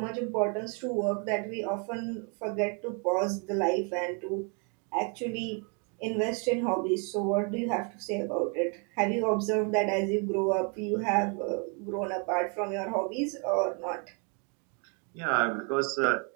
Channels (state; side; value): quieter; left; 36.3 dB